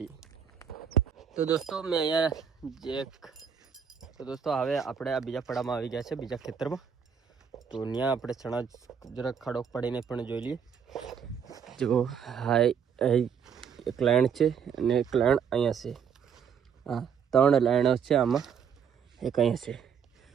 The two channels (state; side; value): quieter; left; 7.3 dB